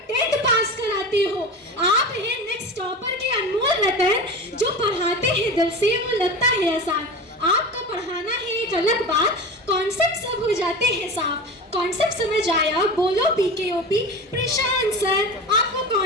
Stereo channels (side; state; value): both; normal; correlation 0.29